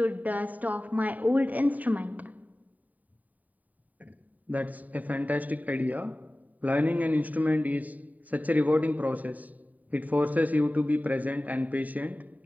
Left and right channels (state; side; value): late; left; 0.075 ms